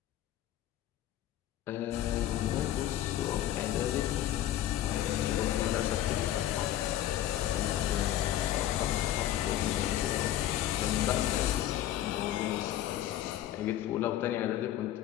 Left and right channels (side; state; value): right; quieter; 12.9 dB